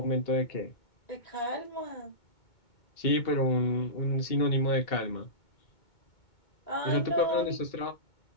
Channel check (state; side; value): late; right; 2.2 ms